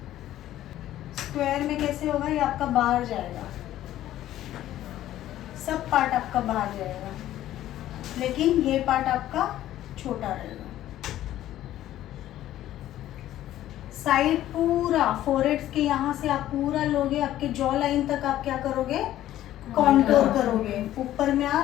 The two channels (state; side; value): quieter; right; 13.3 dB